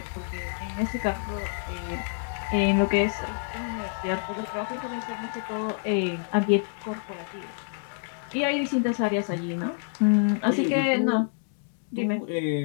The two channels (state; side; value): silent; right; digital silence